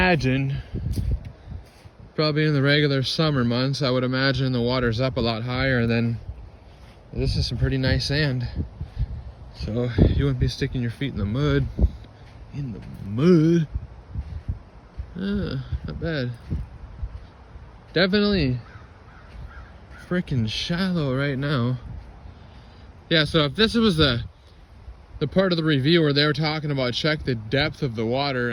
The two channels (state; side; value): identical; both; correlation 1.00